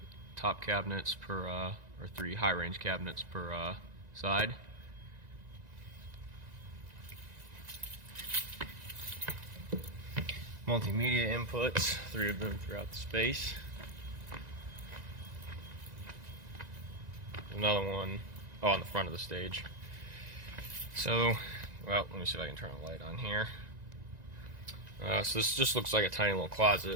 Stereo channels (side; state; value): left; late; 1.9 ms